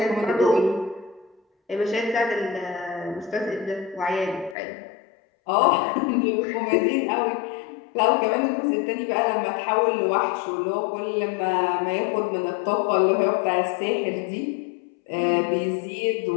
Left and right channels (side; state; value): right; drops out; at 4.5 s